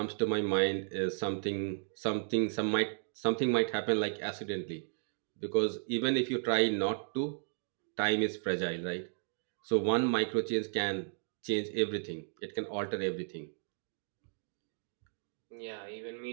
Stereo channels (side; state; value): left; silent; digital silence